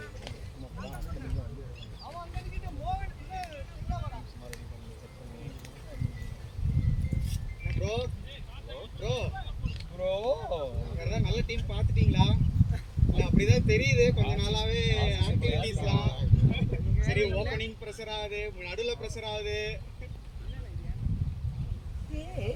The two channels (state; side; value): identical; both; correlation 1.00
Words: ப்ரோ ப்ரோ ப்ரோ வேற நல்ல டீம் பார்த்துட்டீங்களா? இல்ல அப்படிதான் தெரியுது கொஞ்ச நாளாவே ஆக்டிவிட்டீஸ்லாம். சரி ஓப்பனிங் ப்ரெஷர் ஆகுது, நடுவுல ப்ரெஷர் ஆகுது.